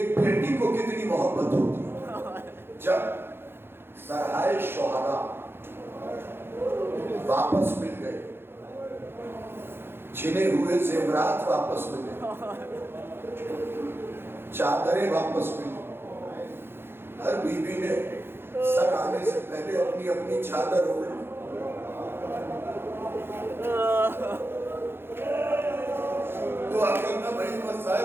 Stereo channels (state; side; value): late; left; 0.11 ms